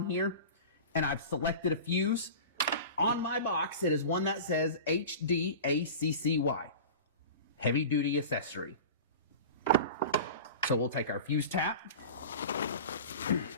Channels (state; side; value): inverted; both; correlation -0.34